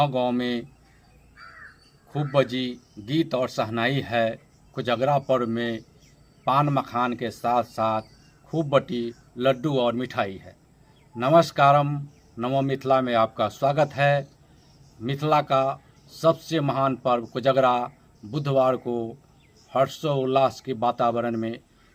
में खूब बजी गीत और शहनाई है। कोजगरा पर्व में पान मखान के साथ साथ खूब बटी लड्डू और मिठाई है। नमस्कारम, नमो मिथिला में आपका स्वागत है। मिथिला का सबसे महान पर्व कोजगरा बुधवार को हर्षोल्लास के वातावरण में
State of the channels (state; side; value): identical; both; correlation 1.00